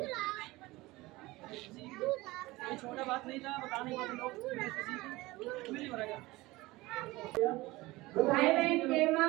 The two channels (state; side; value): quieter; left; 20.3 dB